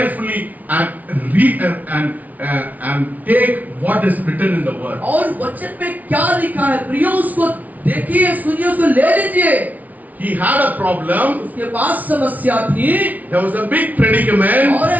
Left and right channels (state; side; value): late; left; 0.074 ms